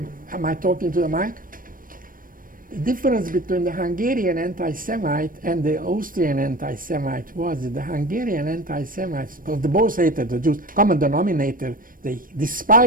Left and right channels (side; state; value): left; late; 0.40 ms